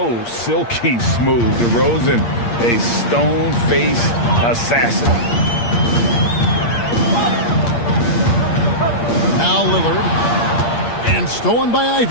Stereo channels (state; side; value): late; right; 8.6 ms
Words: silky smooth. DeRozan, a stone-faced assassin. Now Lillard. And stolen by